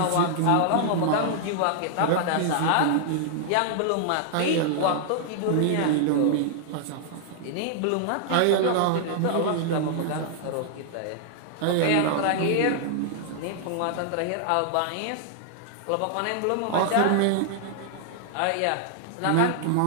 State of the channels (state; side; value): different; both; correlation -0.01